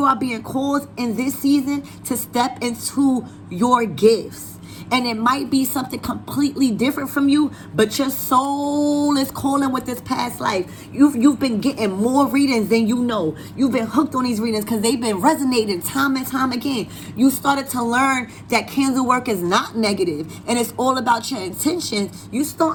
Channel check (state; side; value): identical; both; correlation 1.00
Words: are being called in this season to step into your gifts. And it might be something completely different from you, but your soul is calling with this past life. You've been getting more readings than you know. You've been hooked on these readings because they've been resonating time and time again. You started to learn that candle work is not negative and it's all about your intentions. You